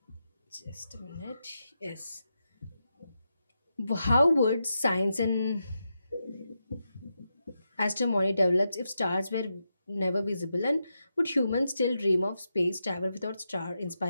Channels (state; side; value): inverted; both; correlation -0.87